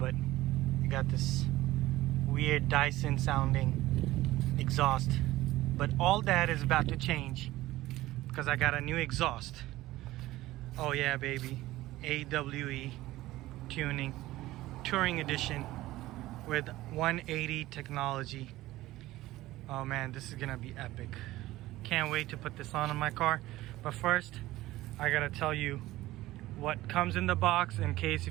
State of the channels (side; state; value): left; quieter; 16.8 dB